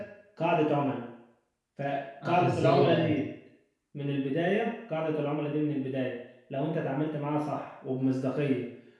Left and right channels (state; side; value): identical; both; correlation 1.00